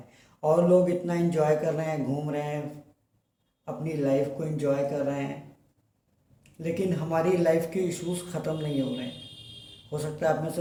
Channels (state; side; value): identical; both; correlation 1.00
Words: और लोग इतना एंजॉय कर रहे हैं, घूम रहे हैं, अपनी लाइफ को एंजॉय कर रहे हैं, लेकिन हमारी लाइफ के इश्यूज ख़त्म नहीं हो रहे हैं। हो सकता है आप में से